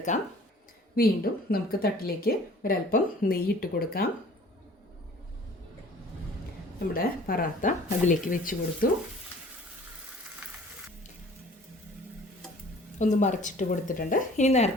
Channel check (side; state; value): both; normal; correlation 0.50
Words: വീണ്ടും നമുക്ക് തട്ടിലേക്ക് ഒരല്പം നെയ്യിട്ട് കൊടുക്കാം. നമ്മുടെ പൊറോട്ട അതിലേക്ക് വെച്ച് കൊടുത്തു. ഒന്ന് മറിച്ചിട്ട് കൊടുത്തിട്ടുണ്ട്. ഇനി